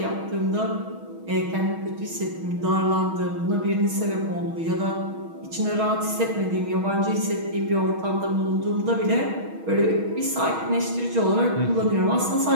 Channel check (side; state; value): left; late; 6.3 ms